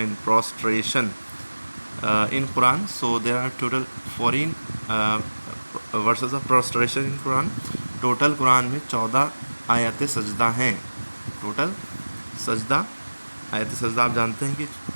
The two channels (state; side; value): inverted; both; correlation -1.00